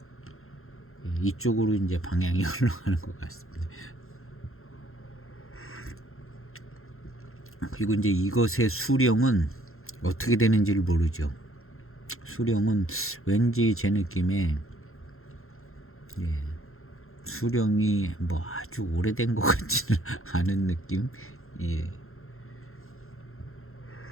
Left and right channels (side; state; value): right; late; 0.62 ms